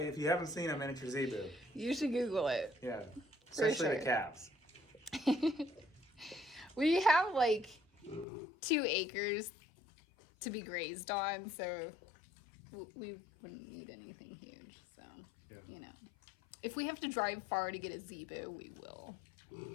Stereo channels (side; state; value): right; drops out; at 8.2 s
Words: you haven't seen a miniature zebu, You should Google it. yeah, especially sure. the calves. We have like 2 acres to be grazed on, so we wouldn't need anything huge. So, you know, if we have to drive far to get a zebu, we will.